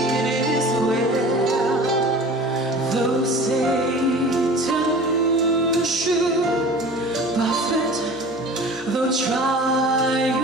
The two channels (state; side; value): normal; both; correlation 0.40